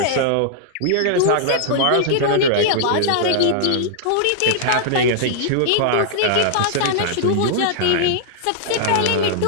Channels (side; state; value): both; different; correlation -0.01